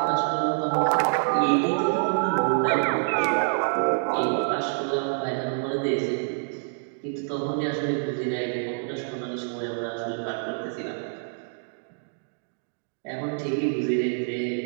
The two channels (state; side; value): silent; left; digital silence